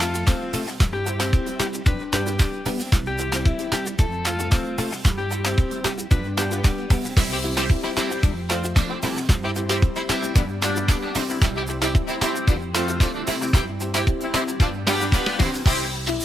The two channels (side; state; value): both; normal; correlation 0.88